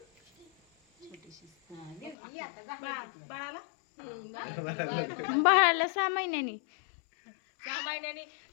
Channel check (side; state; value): right; drops out; at 2.1 s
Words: छोटीशी ये आता बाळाला बाळाला 6 महिन्यांनी 6 महिन्यांनी